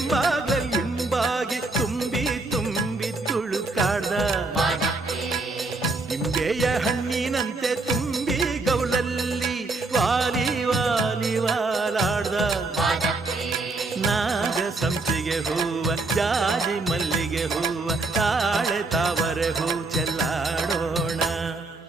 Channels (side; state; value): left; quieter; 3.3 dB